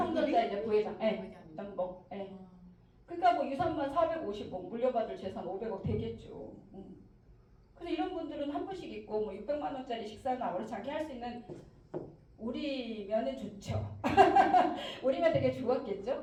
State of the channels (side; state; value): both; identical; correlation 1.00